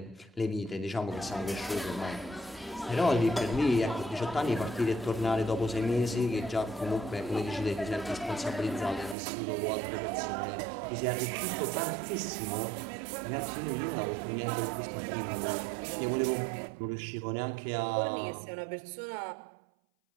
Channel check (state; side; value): drops out; left; at 9.2 s